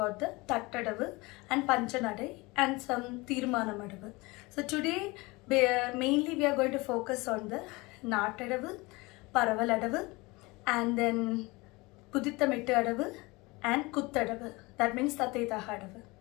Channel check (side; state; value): right; quieter; 23.8 dB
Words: the Tattadavu and Panchanadai and some Tirmanamadavu. So today mainly we are going to focus on the Nattadavu, Paravaladavu and then Pudithamittu Adavu and Kuttadavu. That means Tathetahadavu.